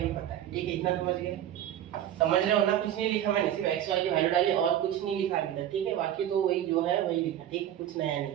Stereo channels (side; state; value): left; quieter; 11.3 dB